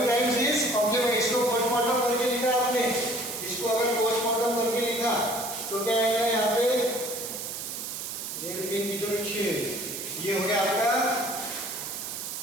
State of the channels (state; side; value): noise; right; hiss, 6 dB below the sound